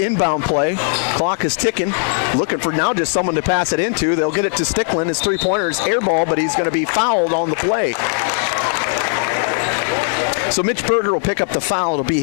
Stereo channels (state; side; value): silent; right; digital silence